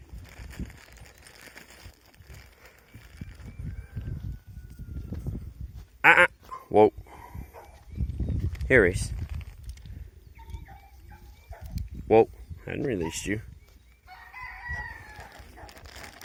Whoa. Here, Reese. Whoa. I hadn't released you.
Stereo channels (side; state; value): both; identical; correlation 1.00